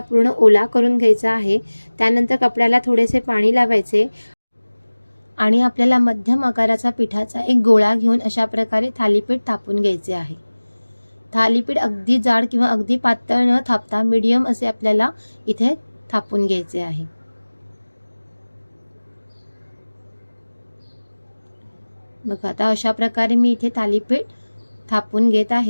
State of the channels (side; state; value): both; inverted; correlation -1.00